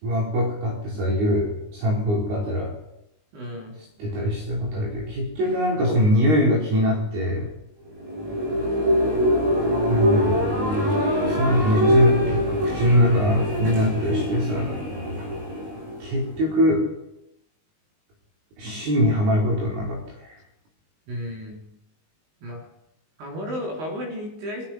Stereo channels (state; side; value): late; left; 19 ms